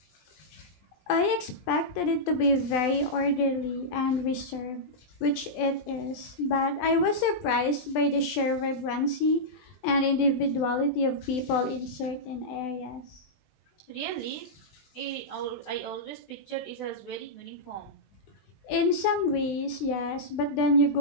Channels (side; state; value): right; late; 20 ms